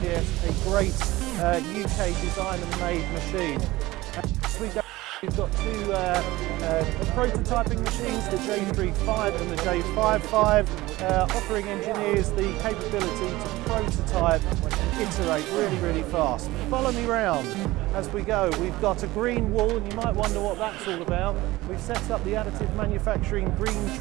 a great UK design and made machine. We've got two prototyping machines, the J35 and the J55, offering engineers the capability to prototype and iterate really fast. Follow me round as we go. We've got a green wall, and you might wonder what that's all about. We've set up the Additive Manufacturing Green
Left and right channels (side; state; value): left; quieter; 18.7 dB